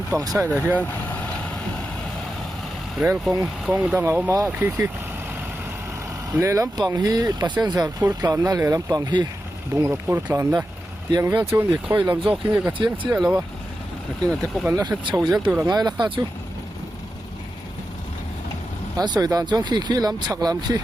sai da hian rail kong dang a ma khi le lampang hi passenger phur tlan na le lampang hi bungrop phur tlan na tiang vel chu ni khoi lam jok hi ka chiang chia lawa lakin ate ko kan la chho jel tu rangai la kha chu an soi dan chong khi lam chak lam khi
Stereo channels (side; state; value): both; normal; correlation 0.90